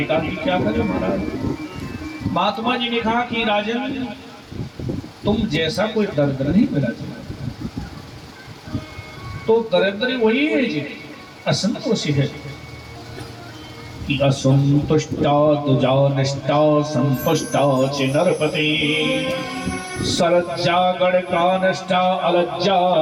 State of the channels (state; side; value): identical; both; correlation 1.00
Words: कहा कि क्या करें महाराज? महात्मा जी ने कहा कि राजन, तुम जैसा कोई दर्द नहीं मिला जी, तो दरिद्र वही है जी, असंतोषी है। कि असंतुष्टा तुजा निष्ठा संतुष्टा च नरपति, सरज्जा गणका निष्ठा अलज्जा